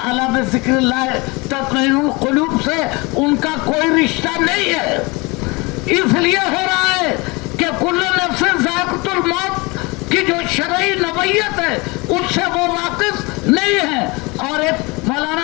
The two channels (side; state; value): right; quieter; 26.0 dB